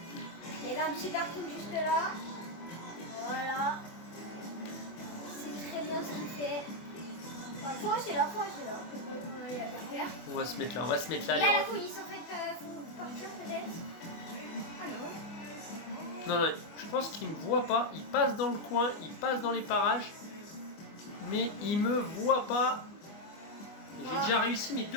Il y avait un petit parking juste là. Voilà. C'est très bien ce qu'il fait. Enfin, faut rester là. On va aller la faire. On va se mettre là, Il y les a la refs. police en fait, faut partir peut-être. Ah non. Non, je pense qu'il me voit pas. Il passe dans le coin, il passe dans les parages. Mais il me voit pas. J'ai déjà réussi mes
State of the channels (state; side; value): late; right; 24 ms